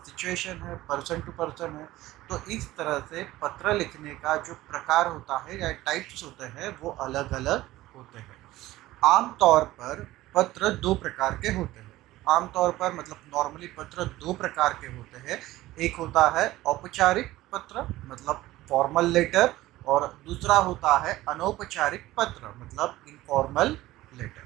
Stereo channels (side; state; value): left; quieter; 16.7 dB